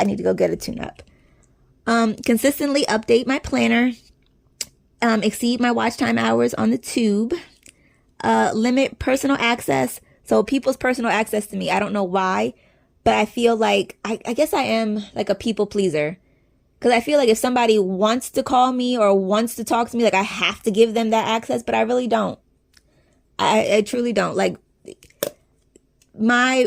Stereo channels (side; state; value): both; identical; correlation 1.00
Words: need to go get a tune-up. Consistently update my planner. Exceed my watch time hours on the tube. Limit personal access. So people's personal access to me, I don't know why, but I feel like, I guess I am like a people pleaser. Because I feel like if somebody wants to call me or wants to talk to me, like I have to give them that access, but I really don't. I truly don't. Like my